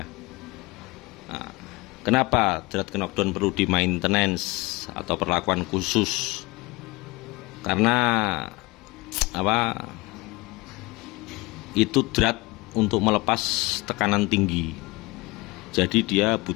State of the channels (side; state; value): right; quieter; 23.2 dB